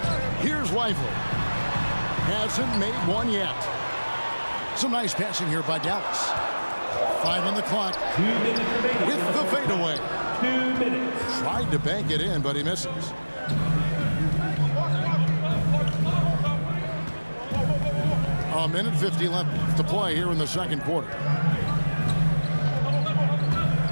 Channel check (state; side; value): inverted; both; correlation -1.00